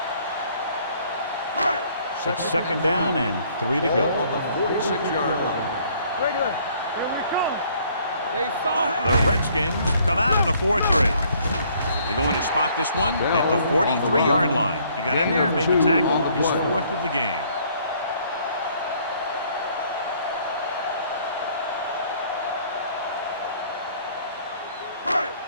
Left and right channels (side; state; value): both; inverted; correlation -0.62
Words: It's second down and 3 to go. On the 46-yard line. Regular. Here we come. They saw it. The Redskins come out in a 4-3. They're going to spot this one at the 43-yard line. He got in there and made the tackle, his 4th of the game.